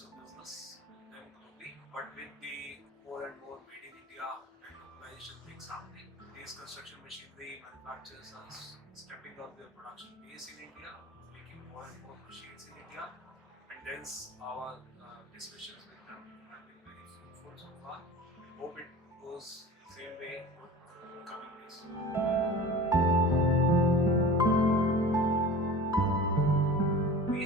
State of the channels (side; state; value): both; normal; correlation 0.37